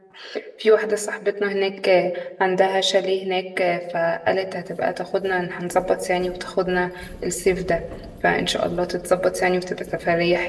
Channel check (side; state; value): both; identical; correlation 1.00